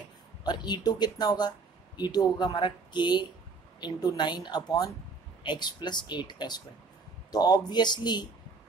और E2 कितना होगा? E2 होगा हमारा K × 9/x + 8²। तो ऑब्वियसली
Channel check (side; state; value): left; quieter; 4.4 dB